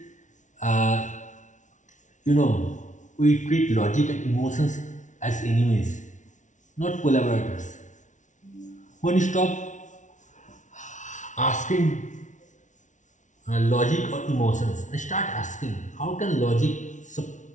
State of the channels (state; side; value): late; right; 0.36 ms